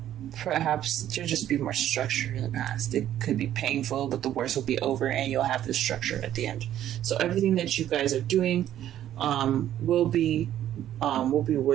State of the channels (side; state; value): left; quieter; 11.7 dB